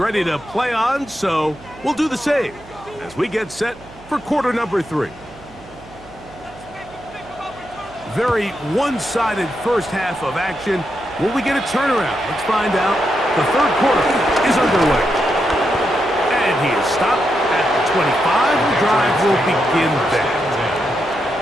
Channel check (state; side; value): noise; right; hum, 22 dB below the sound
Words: to play on, so we'll do the same as we get set for quarter number 3. Very one-sided first half of action. Will we get a turnaround? Let's find out. The third quarter is underway. And he is stopped at the 25. The drive will begin there.